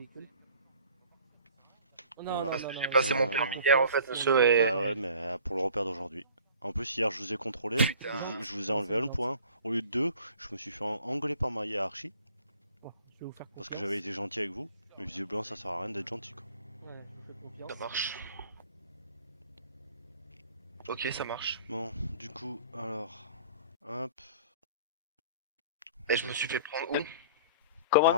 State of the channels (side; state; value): both; inverted; correlation -0.49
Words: J'ai passé mon permis hier en fait, monsieur, et... Bah ouais, mais pour le repère d'aujourd'hui. En plus, hier, je vous ai contrôlé, je vous ai enlevé un point. Au lieu de 2, je me suis fait engueuler par ma hiérarchie. Parce que j'avais été gentil avec vous. Mais visiblement, ça sert à rien d'être gentil, quoi. Ça marche. Ok, ça marche. Bon, du coup, alors... Hop... Et je me suis fait prendre où?